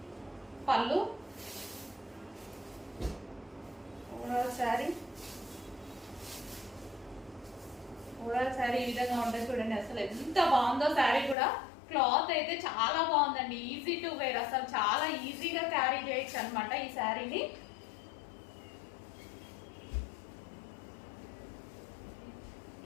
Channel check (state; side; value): drops out; right; at 11.4 s